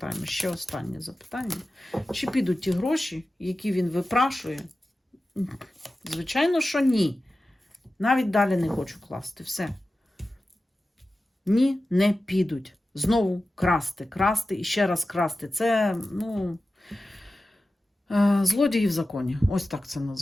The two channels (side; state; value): both; normal; correlation 0.94